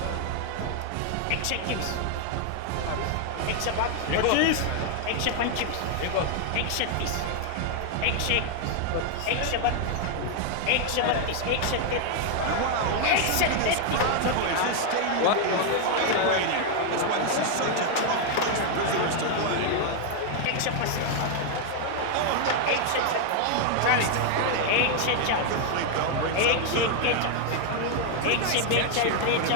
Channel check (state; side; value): different; both; correlation 0.00